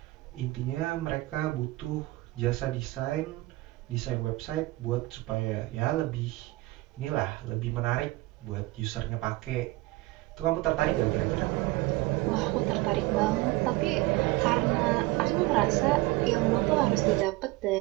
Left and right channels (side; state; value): left; quieter; 20.4 dB